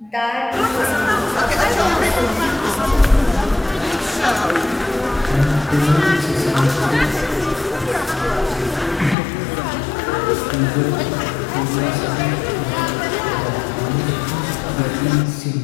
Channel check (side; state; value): right; drops out; at 9.2 s